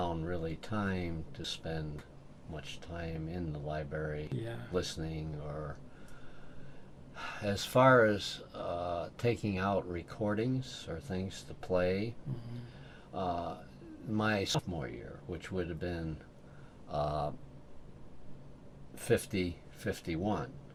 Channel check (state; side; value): identical; both; correlation 1.00